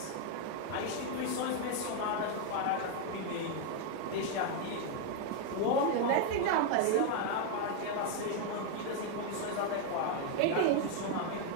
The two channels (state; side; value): different; both; correlation 0.01